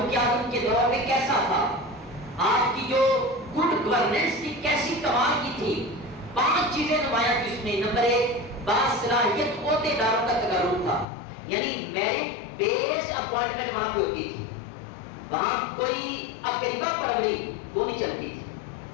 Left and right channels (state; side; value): drops out; right; at 11.1 s